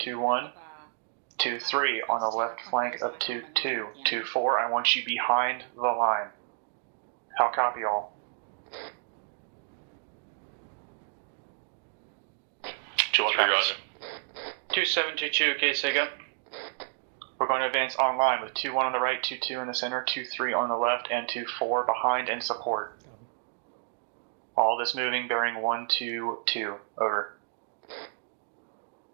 2-3 on the left flank of 2-2. 2-4, I want you behind the line. How copy all? 2-1 roger. 2722, okay, say again. We're going to advance online with 2-1 on the right, 2-2 in the center, 2-3 on the left, and 2-4 behind and support. All this moving bearing 1-2-2. Over.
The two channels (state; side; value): silent; left; digital silence